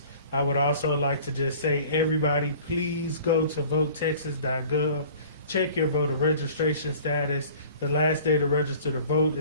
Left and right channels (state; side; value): inverted; both; correlation -0.48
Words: I would also like to just say, everybody, please go to votetexas.gov. Check your voter registration status. The last day to register to vote